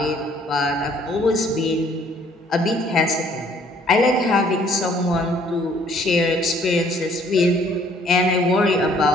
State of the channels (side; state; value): both; normal; correlation 0.60